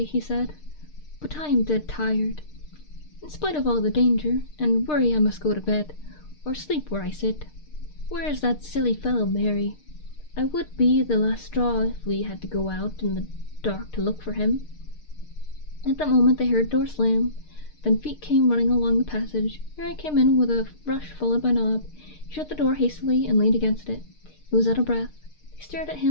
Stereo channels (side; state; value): right; late; 6.6 ms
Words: he said, but I am dead tired. In spite of all the danger and worry, I must go to bed, or sleep where I sit. Where is that silly fellow, Mary? I would be the last straw if we had to go out in the dark to look for him." At that moment they heard a door slam, then feet came running along the passage. Mary came in with a rush, followed by Nob. He shut the door hastily and leaned against it. He was out of breath. They stared at